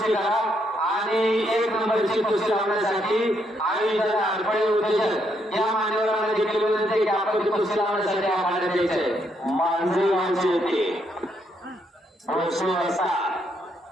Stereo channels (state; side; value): normal; both; correlation 0.75